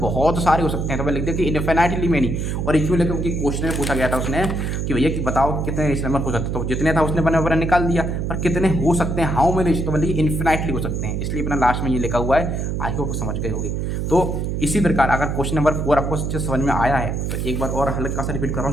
सारे हो सकते हैं। तो मैं लिख दिया कि इन्फिनाइटली मैनी और इक्वल लेकर उनकी क्वेश्चन में पूछा गया था उसने कि भैया कि बताओ कितने रेशनल नंबर हो सकते हैं, तो जितने था उसने बना निकाल दिया, पर कितने हो सकते हैं हाउ मेनी रेशनल, तो बोलिए इन्फिनाइटली हो सकते हैं, इसलिए अपना लास्ट में ये लिखा हुआ है। आई होप समझ गए होंगे। तो इसी प्रकार अगर क्वेश्चन नंबर 4 आपको समझ में आया है तो एक बार और हल्का सा रिपीट कर रहा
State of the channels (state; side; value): noise; right; hum, 1 dB below the sound